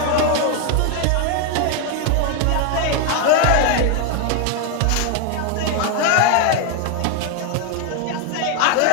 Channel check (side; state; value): both; different; correlation 0.01